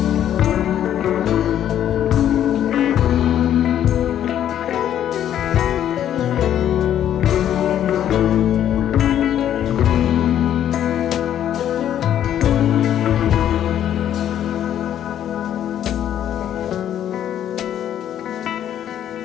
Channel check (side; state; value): right; quieter; 10.6 dB